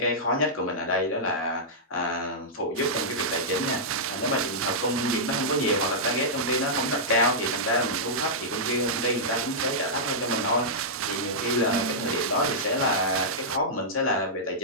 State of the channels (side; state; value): both; normal; correlation -0.11